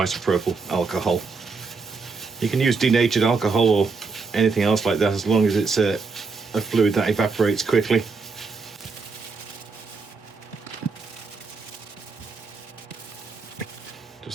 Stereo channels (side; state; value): left; quieter; 4.5 dB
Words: alcohol. You can use denatured alcohol or anything else like that, as long as it's a fluid that evaporates quickly.